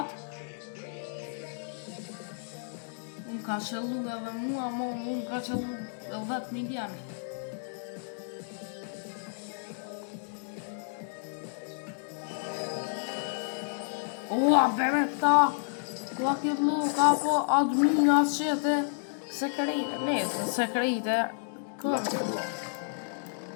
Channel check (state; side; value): silent; right; digital silence